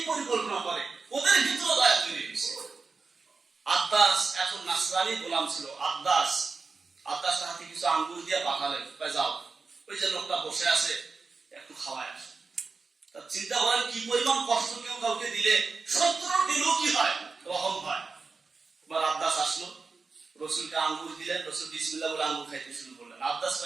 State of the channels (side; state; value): left; quieter; 4.4 dB